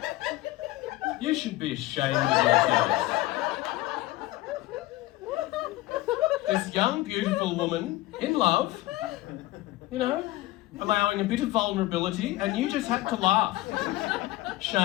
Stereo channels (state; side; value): quieter; right; 17.8 dB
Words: You should be ashamed of yourselves. This young, beautiful woman in love, allowing a bit of vulnerability, and you just had to laugh.